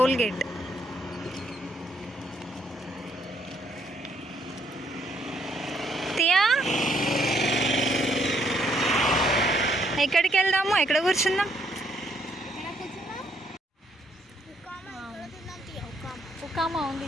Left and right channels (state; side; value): normal; both; correlation 0.71